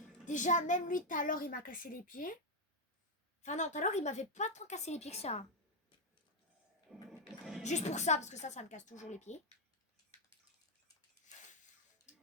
Déjà, même lui, tout à l'heure, il m'a cassé les pieds. Enfin non, tout à l'heure, il m'avait pas tant cassé les pieds que ça. Juste pour ça, parce que ça me casse toujours les pieds.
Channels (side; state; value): both; normal; correlation 0.03